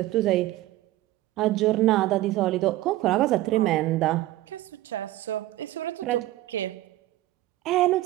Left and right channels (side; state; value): left; quieter; 16.1 dB